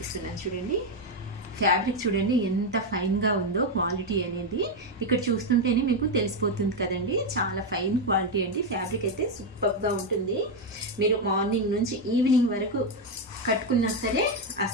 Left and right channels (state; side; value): normal; both; correlation 0.06